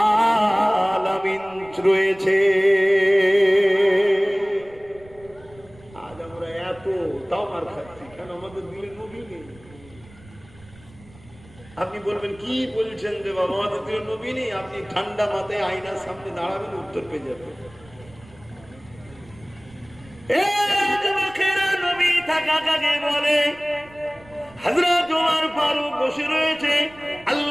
আলামিন রয়েছে। তাও মার খাচ্ছি, কেন? আমাদের দিলের নবী নেই। আপনি বলবেন, কি বলছেন যে বাবা, আমাদের দিলের নবী নেই? আপনি ঠান্ডা মাথায় আয়নার সামনে দাঁড়াবেন, উত্তর পেয়ে যাবেন। নবী থাকা কাকে বলে? হযরত ওমর ফারুক বসে রয়েছে,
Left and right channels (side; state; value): right; noise; rumble, 24 dB below the sound